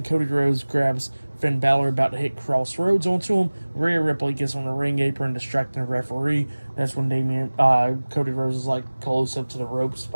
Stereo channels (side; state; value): both; inverted; correlation -1.00